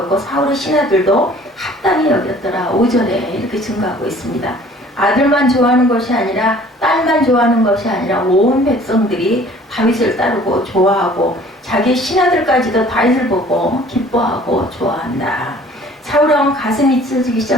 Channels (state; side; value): normal; both; correlation 0.52